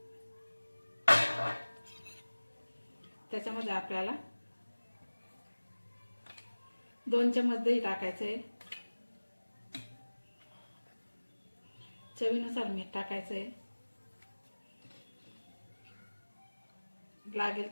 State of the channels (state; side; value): inverted; both; correlation -1.00